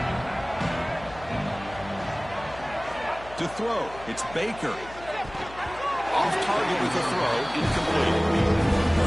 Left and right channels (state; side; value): noise; left; hum, 18 dB below the sound